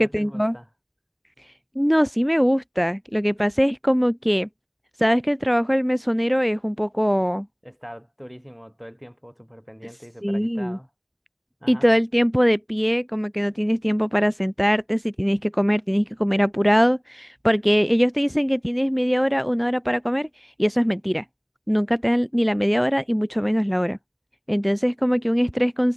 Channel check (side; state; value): both; identical; correlation 1.00